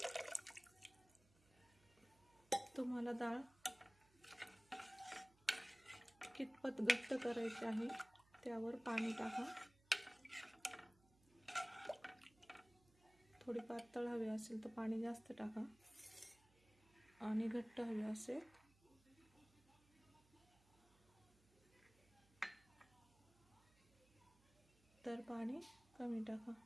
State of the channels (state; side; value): noise; right; hum, 29 dB below the sound